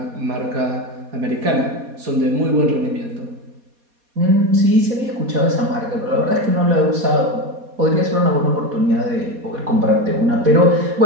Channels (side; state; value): left; late; 4.2 ms